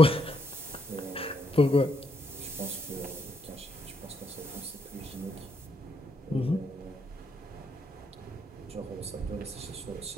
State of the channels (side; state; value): both; normal; correlation 0.76